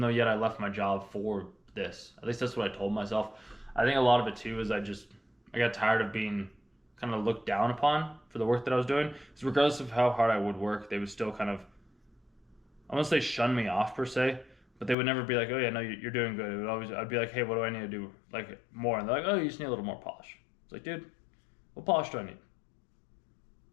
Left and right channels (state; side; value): drops out; right; at 15.0 s